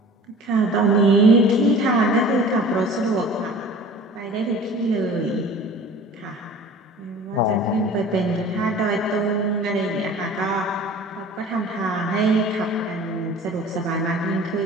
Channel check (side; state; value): both; normal; correlation 0.43